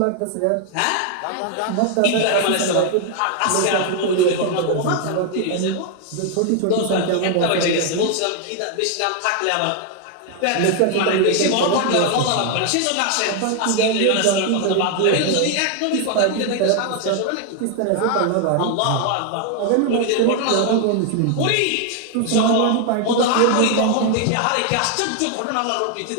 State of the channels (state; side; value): different; both; correlation 0.00